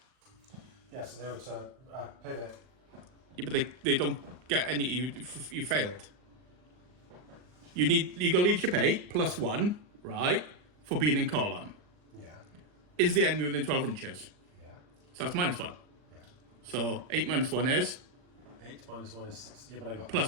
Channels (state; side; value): late; left; 39 ms